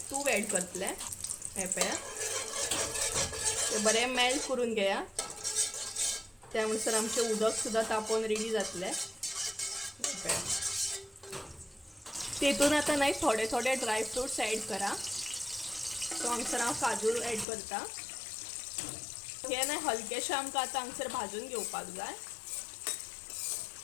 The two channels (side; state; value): right; drops out; at 17.4 s